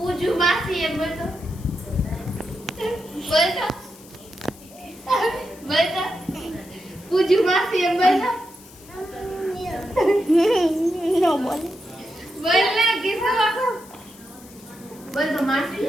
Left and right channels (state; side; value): noise; left; hiss, 22 dB below the sound